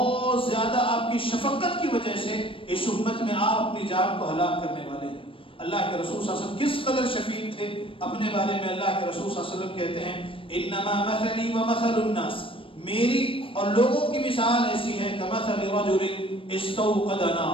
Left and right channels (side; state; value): right; late; 0.26 ms